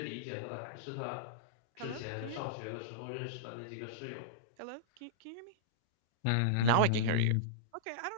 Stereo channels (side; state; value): both; different; correlation -0.03